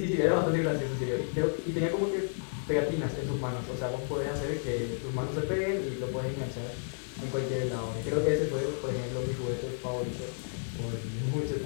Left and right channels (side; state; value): right; silent; digital silence